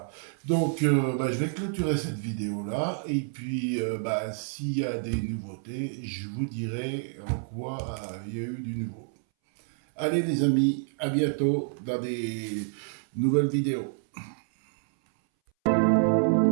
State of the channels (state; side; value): silent; left; 59 dB below the other